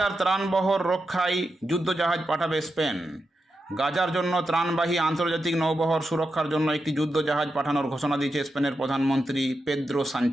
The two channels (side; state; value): both; normal; correlation 0.88